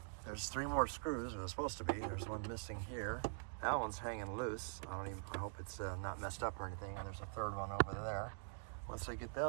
There's 3 more screws. There's supposed to be. There's one missing here. That one's hanging loose. I hope it's not messed up or anything. And there's a 3rd one over there. Once I get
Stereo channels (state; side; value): silent; left; digital silence